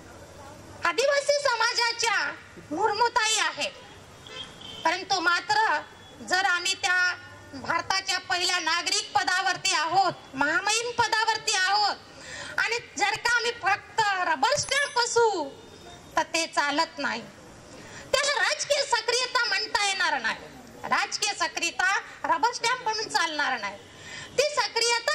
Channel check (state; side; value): identical; both; correlation 1.00